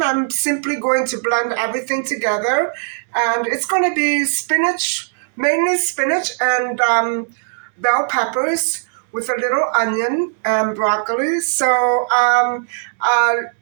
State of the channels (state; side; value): silent; left; digital silence